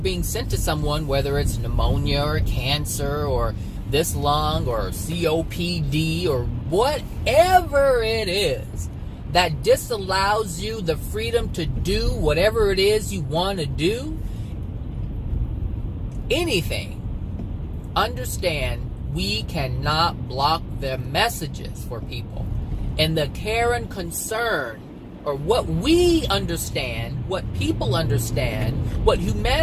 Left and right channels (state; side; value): identical; both; correlation 1.00